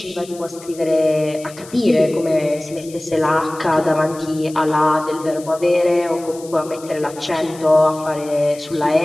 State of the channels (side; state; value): left; noise; hiss, 19 dB below the sound